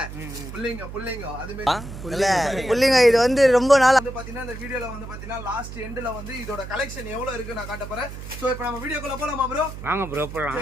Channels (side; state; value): right; noise; hum, 11 dB below the sound